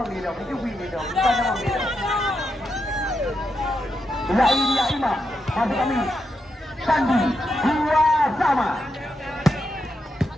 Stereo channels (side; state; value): both; normal; correlation 0.84